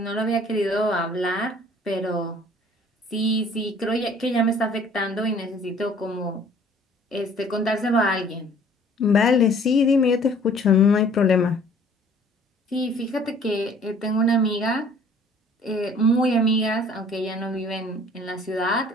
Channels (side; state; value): both; normal; correlation 0.54